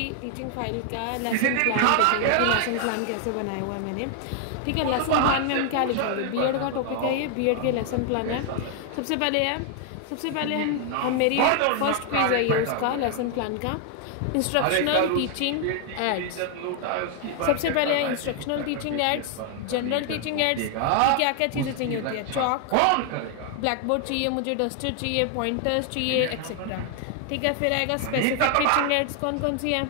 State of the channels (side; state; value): both; different; correlation 0.00